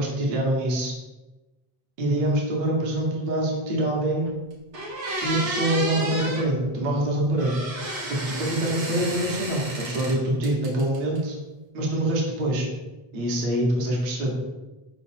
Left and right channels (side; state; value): left; late; 8.3 ms